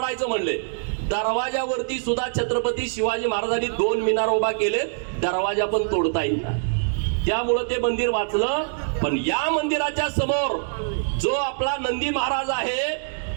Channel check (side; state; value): left; silent; digital silence